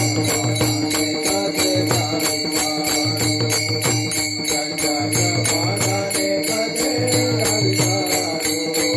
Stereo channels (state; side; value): identical; both; correlation 1.00